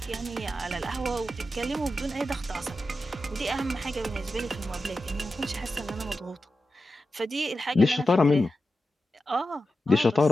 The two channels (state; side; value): normal; both; correlation 0.91